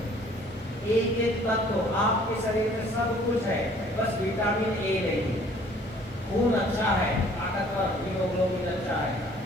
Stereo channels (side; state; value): both; normal; correlation 0.56